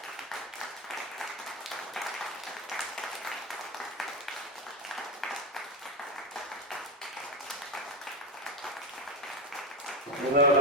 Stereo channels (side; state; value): both; normal; correlation 0.15